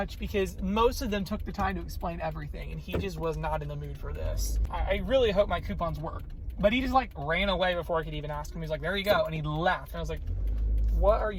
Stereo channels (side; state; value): both; identical; correlation 1.00